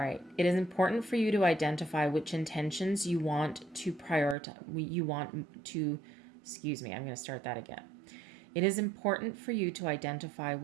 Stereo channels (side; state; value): left; drops out; at 4.4 s